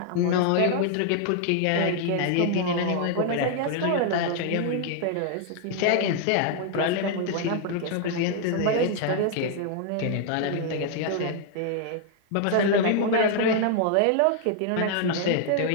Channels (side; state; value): both; different; correlation 0.00